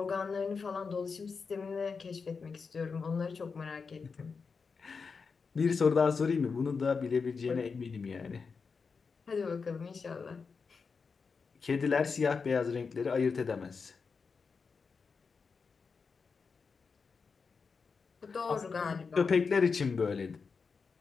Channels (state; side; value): quieter; right; 5.1 dB